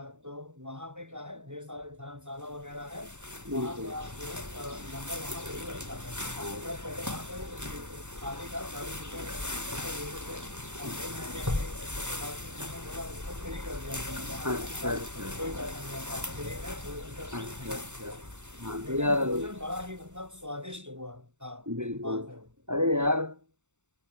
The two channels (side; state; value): left; late; 0.84 ms